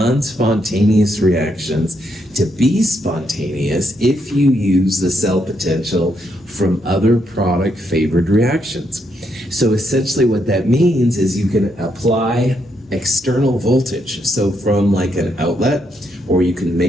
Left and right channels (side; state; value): both; normal; correlation 0.77